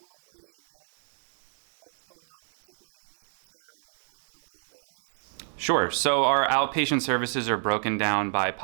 Sure. So our outpatient services are broken down by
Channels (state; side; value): silent; left; digital silence